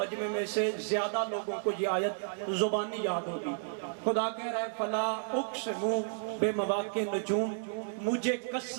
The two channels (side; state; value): left; silent; digital silence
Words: میں سے زیادہ لوگوں کو یہ آیت زبانی یاد ہوگی۔ خدا کہہ رہا ہے فلا اقسم بمواقع النجوم، مجھے